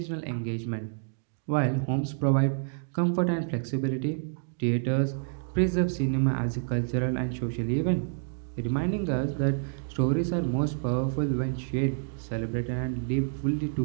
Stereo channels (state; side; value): silent; left; digital silence